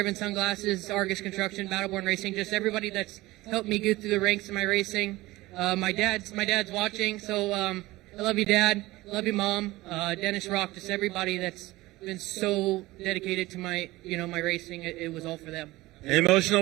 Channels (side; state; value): left; quieter; 18.9 dB